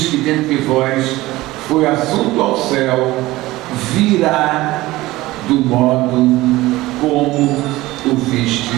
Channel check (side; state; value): left; quieter; 18.4 dB